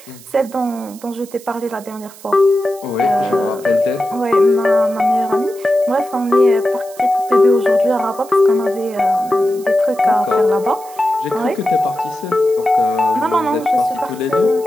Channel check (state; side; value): noise; right; hiss, 21 dB below the sound